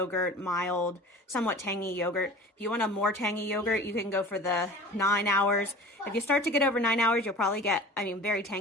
mild, somewhat tangy yogurt. If you want a more tangy yogurt, you can go for the 9 hours. If you start to get over 9 hours, you'll probably get, very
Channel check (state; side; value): normal; both; correlation 0.41